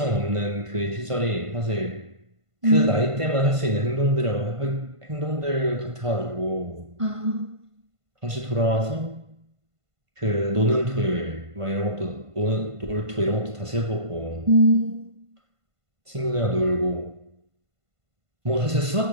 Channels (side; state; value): left; late; 1.5 ms